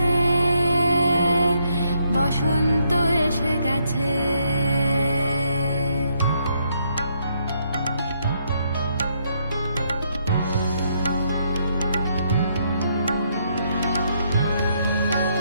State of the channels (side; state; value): both; inverted; correlation -0.74